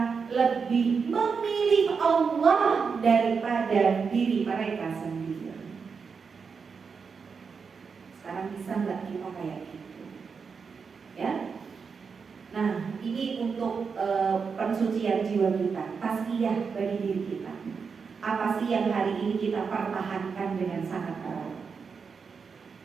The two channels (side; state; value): left; quieter; 5.6 dB